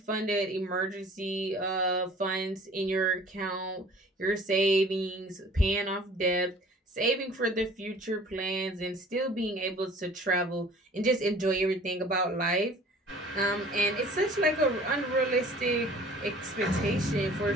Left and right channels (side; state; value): both; normal; correlation 0.49